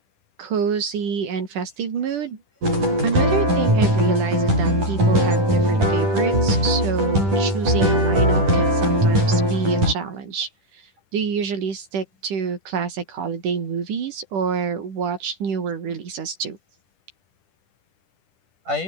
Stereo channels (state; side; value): late; left; 10 ms